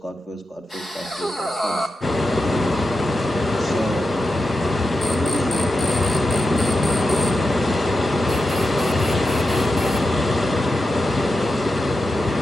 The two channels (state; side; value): normal; both; correlation 0.89